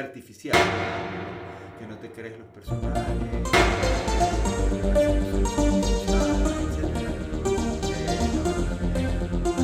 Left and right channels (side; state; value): both; identical; correlation 1.00